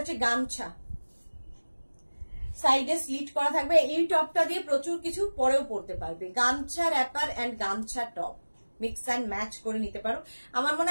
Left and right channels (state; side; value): inverted; both; correlation -1.00